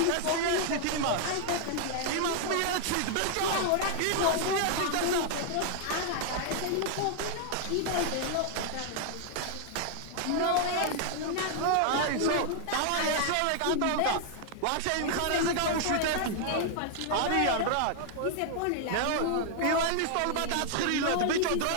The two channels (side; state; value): both; different; correlation 0.00